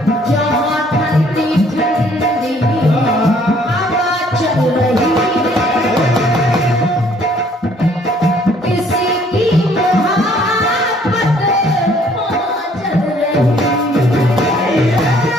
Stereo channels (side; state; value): both; normal; correlation 0.61